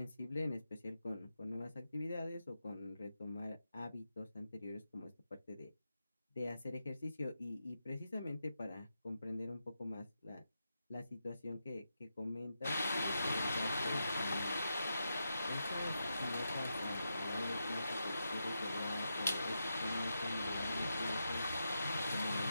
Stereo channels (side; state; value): both; inverted; correlation -0.87